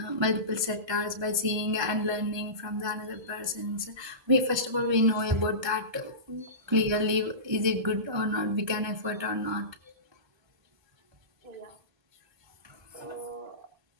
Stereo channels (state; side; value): late; left; 1.3 ms